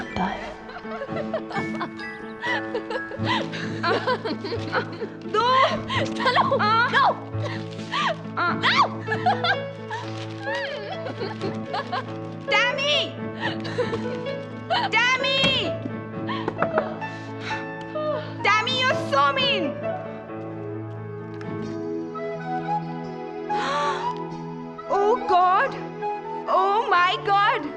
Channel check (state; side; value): identical; both; correlation 1.00